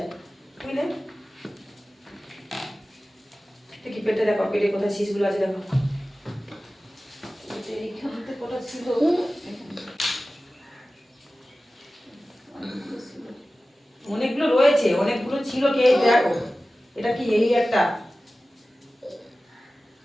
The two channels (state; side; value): normal; both; correlation 0.96